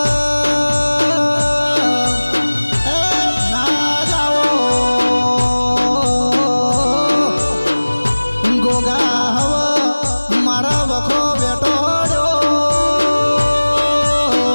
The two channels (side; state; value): both; inverted; correlation -1.00